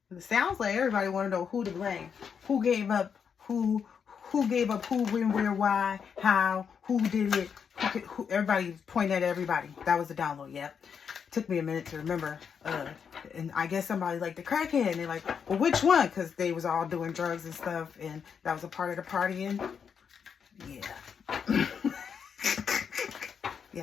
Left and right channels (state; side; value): quieter; right; 6.9 dB